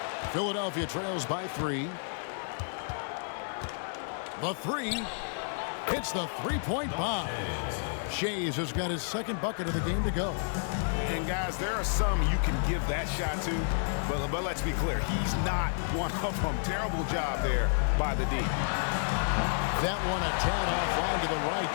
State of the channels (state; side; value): silent; right; 57 dB below the other